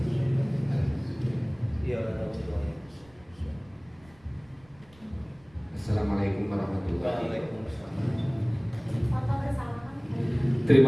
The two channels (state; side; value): noise; right; rumble, 28 dB below the sound